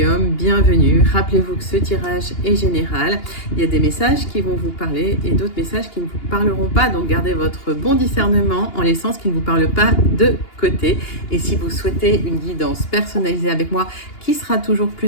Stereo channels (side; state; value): right; late; 2.8 ms